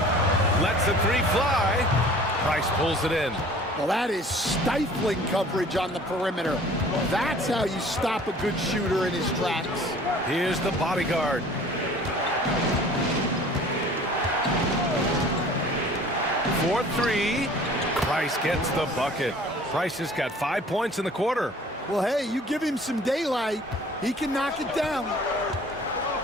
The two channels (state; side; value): normal; both; correlation 0.49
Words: Lets the 3 fly. Price pulls it in. Well, that is stifling coverage on the perimeter. That's how you stop a good shooter in his tracks. Here's the bodyguard. For 3. Price gets the bucket. Price has got 5 points in the quarter. Well, hey, you give him some daylight, he can knock it down.